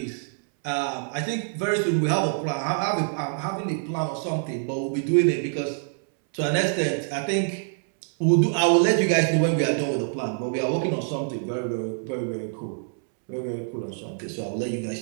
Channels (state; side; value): silent; left; 61 dB below the other